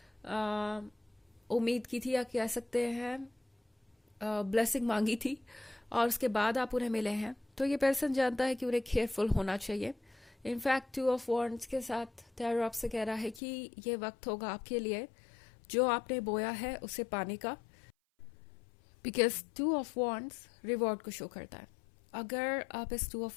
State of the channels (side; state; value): right; drops out; at 13.4 s